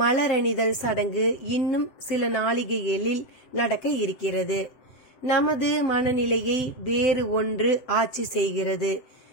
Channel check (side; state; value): right; late; 7.8 ms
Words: சடங்கு இன்னும் சில நாளிகைகளில் நடக்க இருக்கிறது. நமது மனநிலையை வேறு ஒன்று ஆட்சி செய்கிறது.